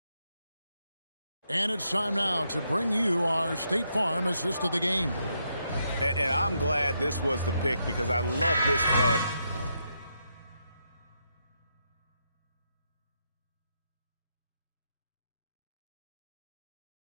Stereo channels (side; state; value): both; inverted; correlation -0.80